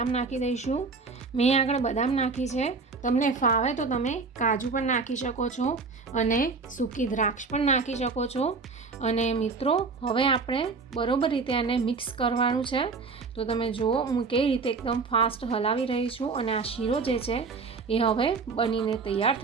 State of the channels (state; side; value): quieter; left; 4.5 dB